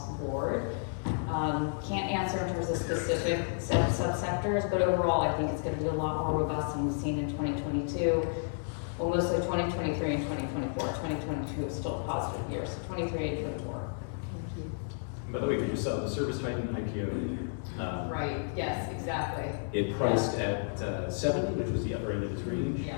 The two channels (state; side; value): silent; right; digital silence